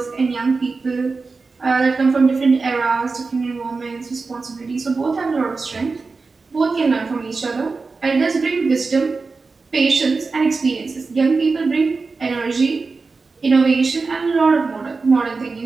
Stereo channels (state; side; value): quieter; left; 4.2 dB